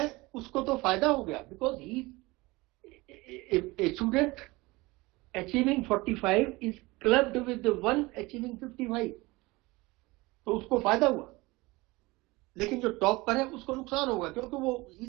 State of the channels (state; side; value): quieter; left; 22.3 dB